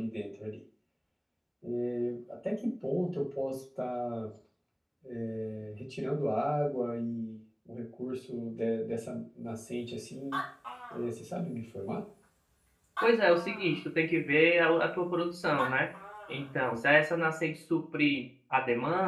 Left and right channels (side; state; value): both; identical; correlation 1.00